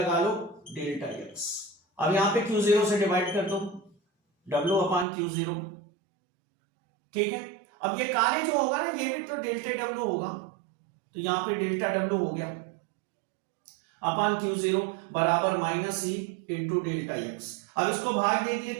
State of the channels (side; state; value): left; drops out; at 5.1 s